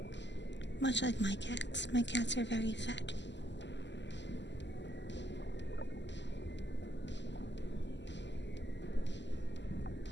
Much like my cats. My cats are very fat.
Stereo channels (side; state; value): right; late; 0.52 ms